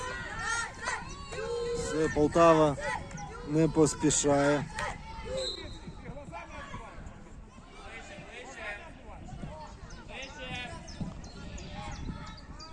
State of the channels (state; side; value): identical; both; correlation 1.00